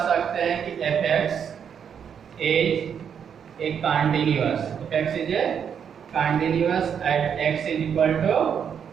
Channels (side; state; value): left; quieter; 7.7 dB